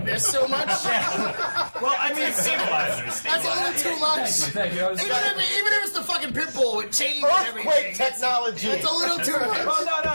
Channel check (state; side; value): inverted; both; correlation -1.00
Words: this so much. Well, I mean, That's a little too much. Even if it's the fucking pit bull with chains and everything. Earthquake technology. It's a little too much. Well, no.